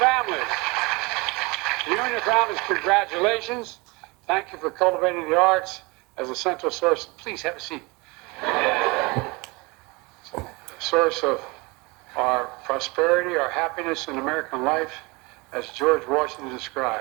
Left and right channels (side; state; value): left; quieter; 25.8 dB